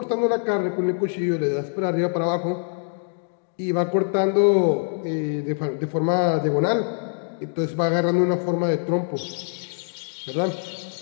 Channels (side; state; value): right; silent; digital silence